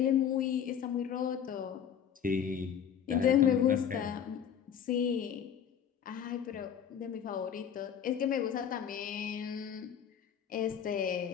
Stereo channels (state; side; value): quieter; right; 8.4 dB